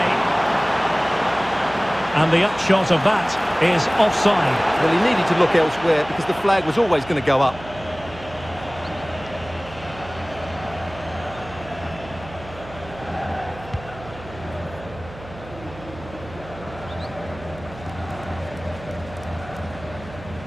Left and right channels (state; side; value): noise; right; hum, 16 dB below the sound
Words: And the upshot of that is offside. Well, he needed to look elsewhere because the flag was always going to go up.